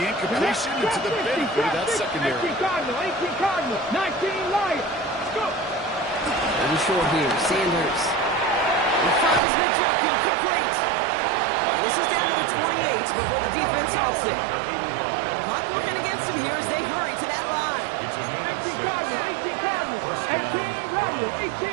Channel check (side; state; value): left; drops out; at 9.4 s